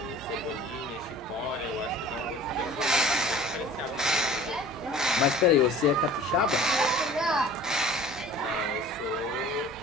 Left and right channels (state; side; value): normal; both; correlation 0.45